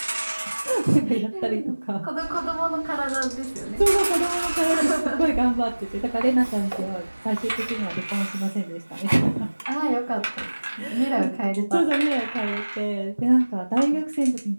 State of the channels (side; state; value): both; inverted; correlation -1.00